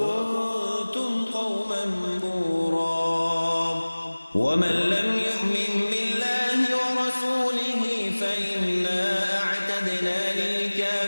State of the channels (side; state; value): both; inverted; correlation -1.00